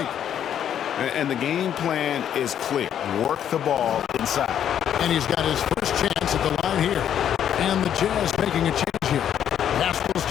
And the game plan is clear. Work the ball inside. And he's got his first chance at the line here. And the Jazz making a change here. Haskell's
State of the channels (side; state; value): right; quieter; 9.6 dB